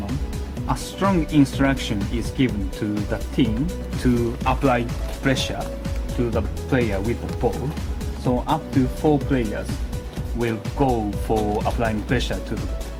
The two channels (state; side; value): identical; both; correlation 1.00